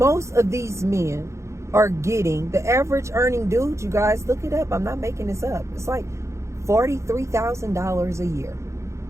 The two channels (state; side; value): late; left; 0.14 ms